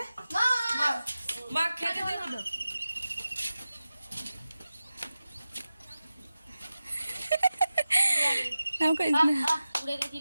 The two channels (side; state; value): both; inverted; correlation -0.94